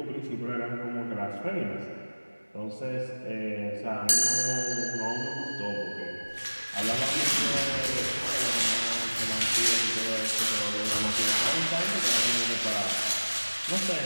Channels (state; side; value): inverted; both; correlation -1.00